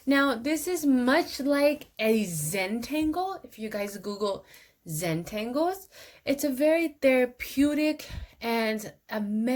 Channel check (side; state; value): both; identical; correlation 1.00